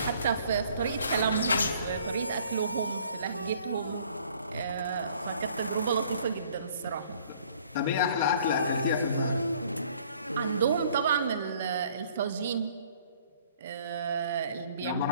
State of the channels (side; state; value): both; inverted; correlation -0.57